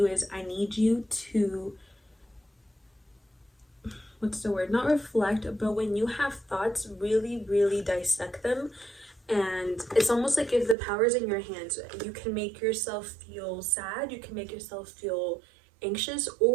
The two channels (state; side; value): drops out; left; at 10.8 s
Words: is I need you to, what's the word? Not reflect, but when you have thoughts, really, really dissect them. And it's almost like if the power's in your hands, you can make yourself feel sad, you can make yourself feel anxious,